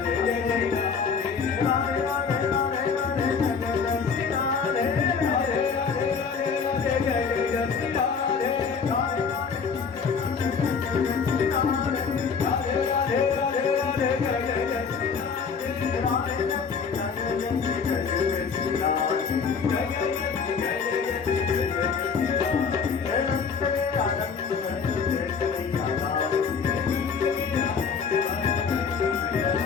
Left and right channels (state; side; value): quieter; right; 5.8 dB